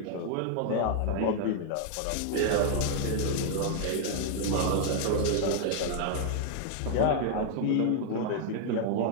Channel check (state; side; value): different; both; correlation 0.00